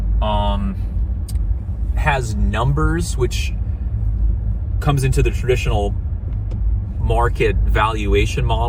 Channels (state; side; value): identical; both; correlation 1.00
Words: has numbers, which comes into the traditional market valuation